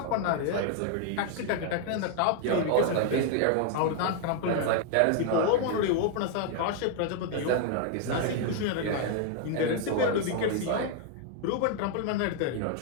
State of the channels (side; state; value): both; different; correlation 0.00